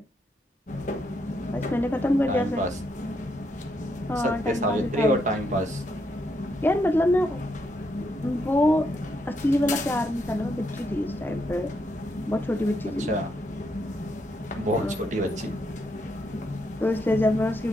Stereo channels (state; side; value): normal; both; correlation 0.78